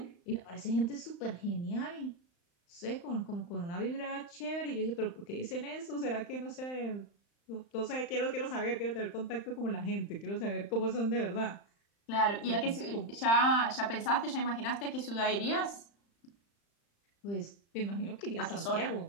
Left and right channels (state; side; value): late; right; 35 ms